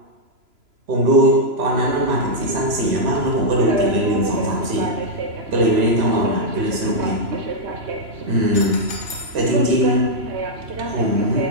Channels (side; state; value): left; late; 3.0 ms